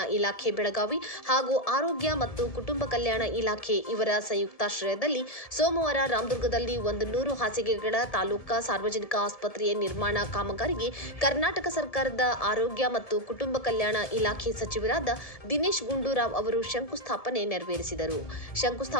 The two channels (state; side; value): late; right; 1.7 ms